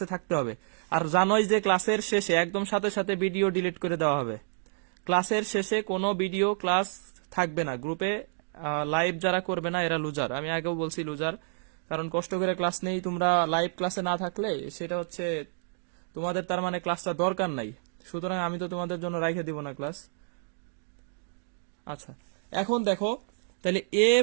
থাকতে হবে। আর জানোই যে ক্লাসের শেষে একদম সাথে সাথে ভিডিও ডিলিট করে দেওয়া হবে। ক্লাসের শেষে কোনো ভিডিও ক্লাস থাকবে না। গ্রুপে লাইভ যারা করবে না এরা লুজার, আমি আগেও বলছি লুজার। কারণ কষ্ট করে ক্লাস নেই, তোমরা লাইভ ক্লাসে না থাকলে সেটা হচ্ছে তোমাদের তার মানে ক্লাসটা দরকার নাই। সুতরাং আমি তো তোমাদের জন্য রাইখে দিব না ক্লাস। আচ্ছা, এখন দেখো, তাহলে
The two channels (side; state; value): left; silent; digital silence